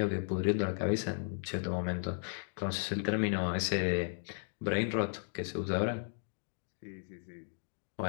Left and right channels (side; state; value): right; silent; digital silence